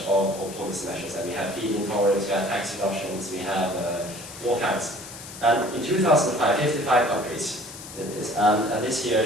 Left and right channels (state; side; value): noise; left; hiss, 14 dB below the sound